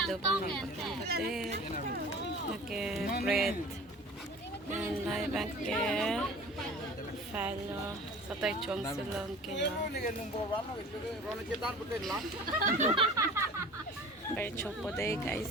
do bang. Okay, bread. And lai bangke. Falo. Satay chong sulong kayo. Very chopo day guys.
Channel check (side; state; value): both; normal; correlation 0.42